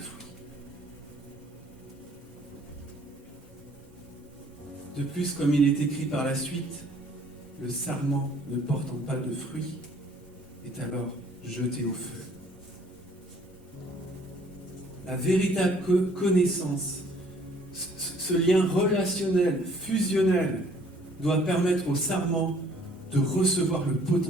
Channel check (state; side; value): normal; both; correlation 0.59